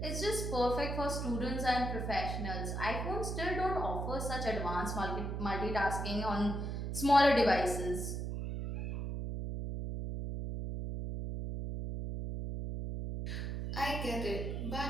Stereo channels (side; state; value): right; noise; hum, 3 dB below the sound